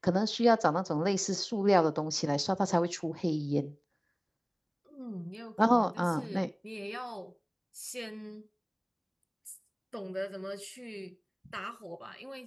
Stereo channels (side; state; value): both; identical; correlation 1.00